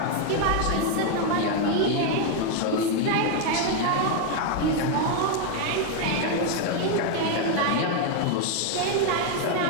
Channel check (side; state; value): both; different; correlation 0.01